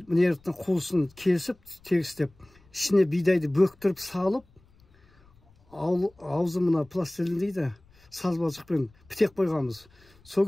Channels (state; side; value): noise; left; rumble, 30 dB below the sound